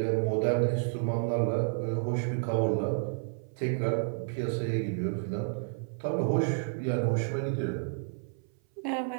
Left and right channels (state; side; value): silent; left; 57 dB below the other